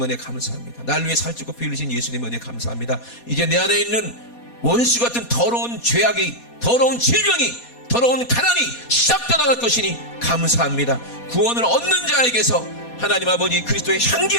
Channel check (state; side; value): late; right; 4.2 ms